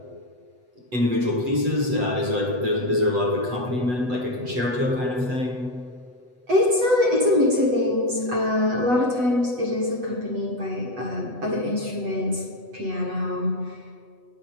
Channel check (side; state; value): left; late; 8.0 ms